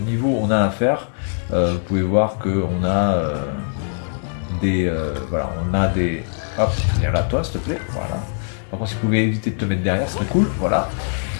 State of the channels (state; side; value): silent; right; digital silence